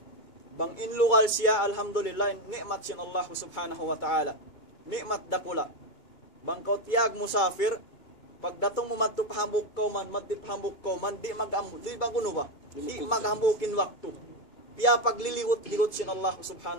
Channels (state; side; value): late; right; 2.3 ms